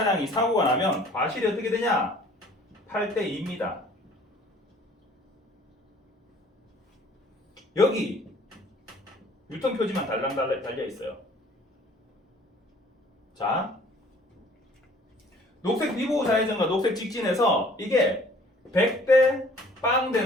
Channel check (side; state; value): both; normal; correlation 0.54